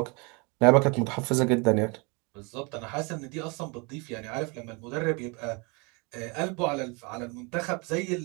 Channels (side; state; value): left; quieter; 30.3 dB